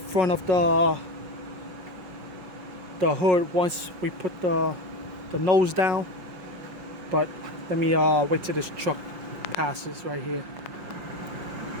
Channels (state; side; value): late; left; 5.5 ms